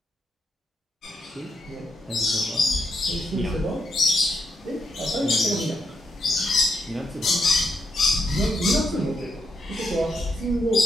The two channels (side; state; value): both; normal; correlation 0.80